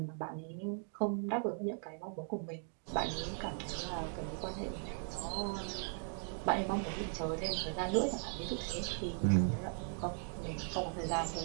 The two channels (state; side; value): silent; left; 52 dB below the other